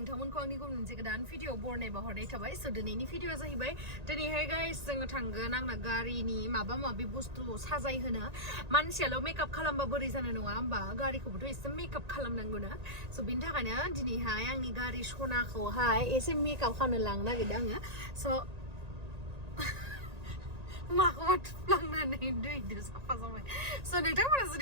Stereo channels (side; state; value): left; late; 1.9 ms